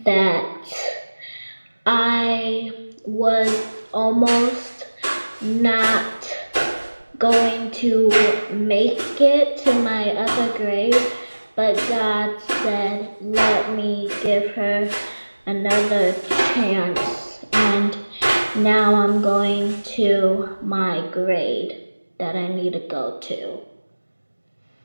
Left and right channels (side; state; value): both; inverted; correlation -1.00